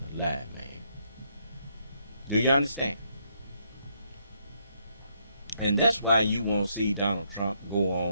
a lie, man. Do you understand? And that's why you won't see Donald Trump go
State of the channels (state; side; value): inverted; both; correlation -0.75